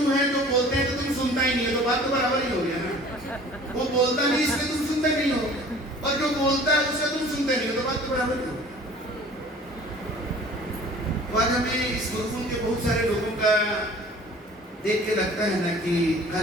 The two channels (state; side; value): normal; both; correlation 0.47